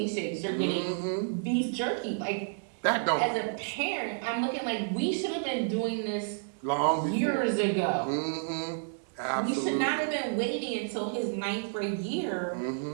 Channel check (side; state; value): left; silent; digital silence